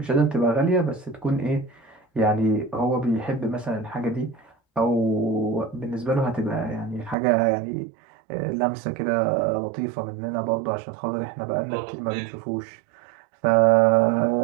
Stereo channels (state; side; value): drops out; left; at 7.2 s